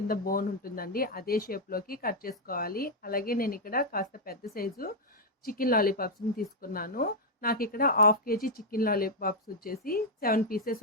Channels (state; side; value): normal; both; correlation -0.01